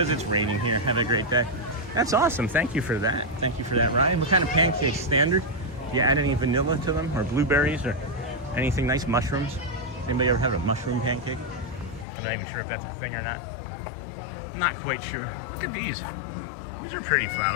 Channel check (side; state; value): right; drops out; at 12.1 s